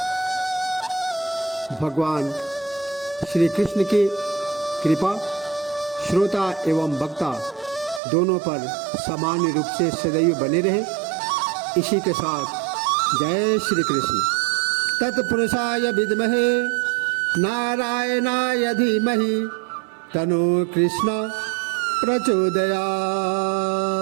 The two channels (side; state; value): left; drops out; at 8.0 s